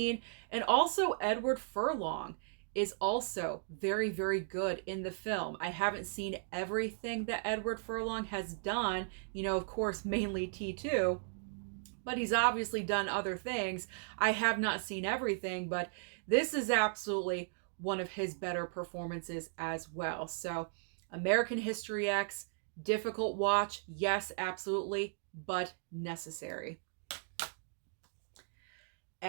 And also Edward Furlong is also very, very good in the film. I haven't seen everything that Edward Furlong has done, of course, mainly T2, but he's obviously done other things. I have not seen everything, but this is absolutely one of his better performances as well. So, American History X, difficult watch, yes, absolutely, but necessary.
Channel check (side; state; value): left; silent; digital silence